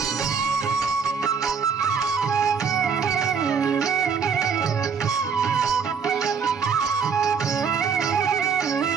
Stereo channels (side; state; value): left; quieter; 6.1 dB